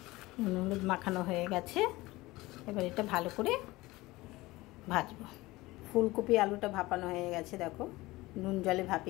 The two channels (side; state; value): right; quieter; 19.9 dB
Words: নুন হলুদ মাখানো হয়ে গেছে, এবার এটা ভালো করে ভাজবো। ফুলকপি আলুটা ভাপানো হয়ে গেছে, দেখো নুন জলে